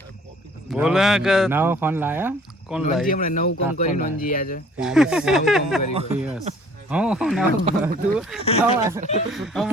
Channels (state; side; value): normal; both; correlation 0.55